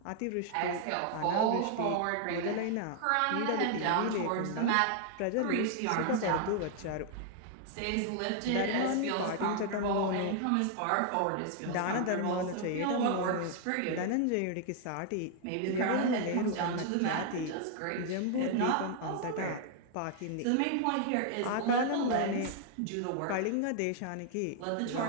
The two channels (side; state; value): both; different; correlation 0.00